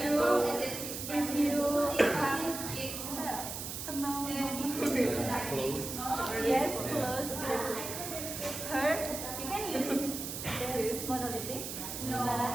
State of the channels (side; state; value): right; noise; hiss, 6 dB below the sound